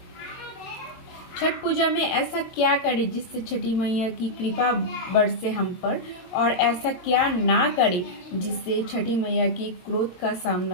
छठ पूजा में ऐसा क्या करें जिससे छठी मैया की कृपा बरसे हम पर, और ऐसा क्या ना करें जिससे छठी मैया की क्रोध का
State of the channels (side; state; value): right; late; 22 ms